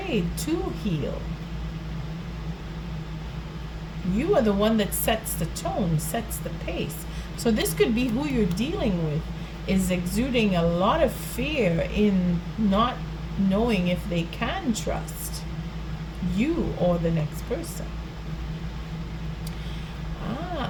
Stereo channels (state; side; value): identical; both; correlation 1.00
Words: to heal. You are the one that sets the tone, sets the pace. So this could be who you're dealing with, is exuding a lot of fear in not knowing if they can trust you or the next person.